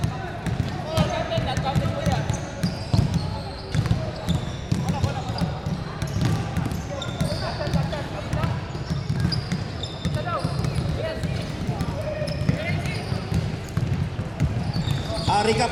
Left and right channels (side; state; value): both; identical; correlation 1.00